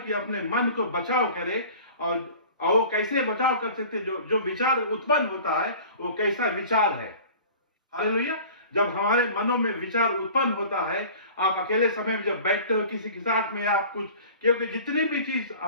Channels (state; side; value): inverted; both; correlation -0.43